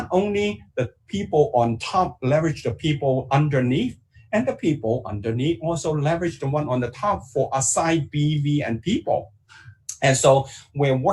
only the people on top leverage the people underneath, and the people underneath also leverage the one on the top for aside BV and people. And so we're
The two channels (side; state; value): both; identical; correlation 1.00